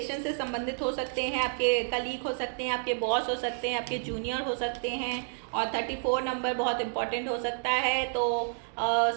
से संबंधित हो सकते हैं, आपके कलीग हो सकते हैं, आपके बॉस हो सकते हैं, आपके जूनियर हो सकते हैं। और 34 नंबर बहुत इंपॉर्टेंट हो सकता है, तो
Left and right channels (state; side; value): silent; left; digital silence